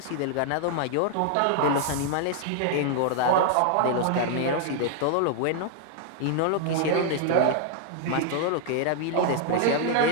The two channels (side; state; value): both; different; correlation 0.00